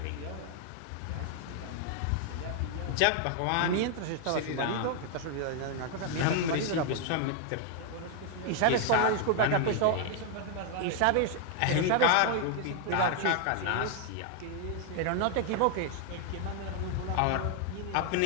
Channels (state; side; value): different; both; correlation 0.00